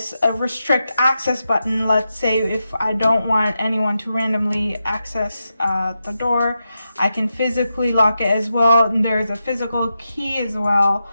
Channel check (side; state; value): both; inverted; correlation -0.88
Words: restrict access button. Let's say if I don't want anyone to randomly access the door, I can physically lock it as well. And there's a physical key as well